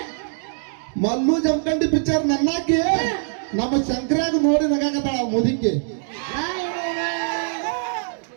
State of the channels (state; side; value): silent; left; digital silence